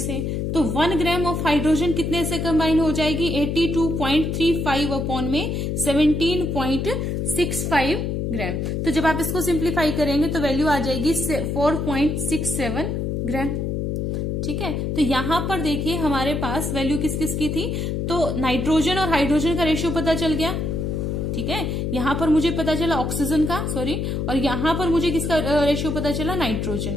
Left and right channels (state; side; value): noise; left; hum, 1 dB below the sound